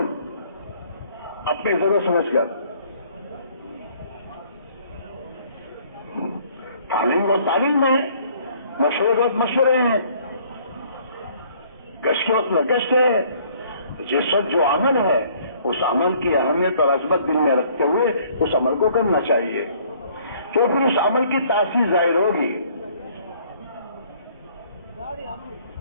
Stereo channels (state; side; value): inverted; both; correlation -0.59